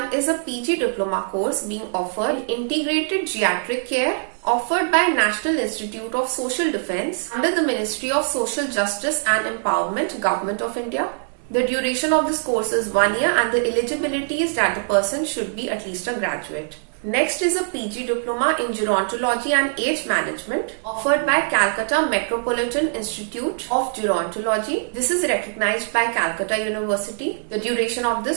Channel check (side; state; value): left; silent; digital silence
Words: is a PG diploma course being offered in integrated geriatric care, offered by National Institute of Social Defence under the Ministry of Social Justice and Empowerment, Government of India. The duration of this course is 1 year and the eligibility is that the person should be at least a graduate. Next is a PG Diploma in Gerontology and Age Management offered by Calcutta Metropolitan Institute of Gerontology. This is recognized by Calcutta University. The duration of